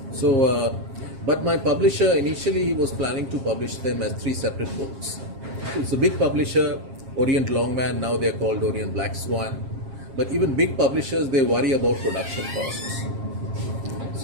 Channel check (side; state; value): left; late; 7.4 ms